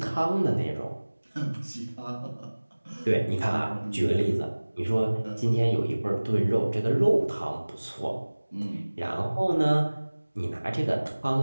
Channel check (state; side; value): inverted; both; correlation -1.00